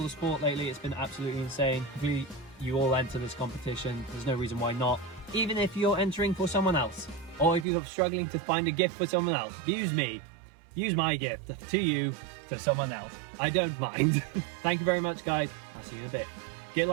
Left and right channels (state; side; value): drops out; left; at 7.7 s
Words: support lately. It's been absolutely insane. Hopefully you all enter this competition. There's no reason why not. Even if you're entering for someone else, or if you're struggling to find a gift for someone else, use me. Use my gift to you, to someone else. I don't mind. Thank you very much, guys. I'll see you in a bit. Get